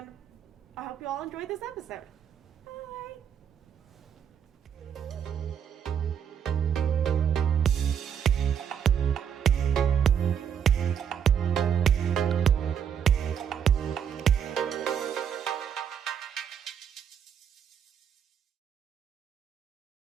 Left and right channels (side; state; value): left; quieter; 8.1 dB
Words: I hope you all enjoyed this episode.